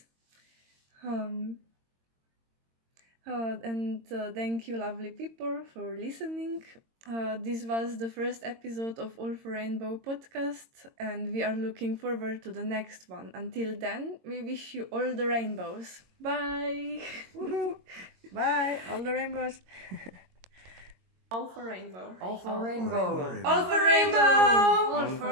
And thank you, lovely people, for listening. This was the first episode of All for Rainbow podcast, and we are looking forward to the next one. Until then, we wish you all the rainbows. Bye! Bye, all the rainbows. All for rainbow. All for rainbow. All for rainbow. All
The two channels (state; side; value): late; left; 22 ms